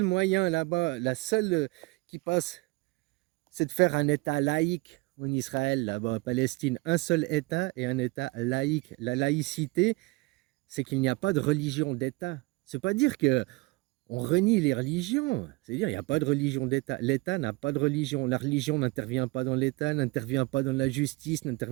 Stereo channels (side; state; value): left; quieter; 23.8 dB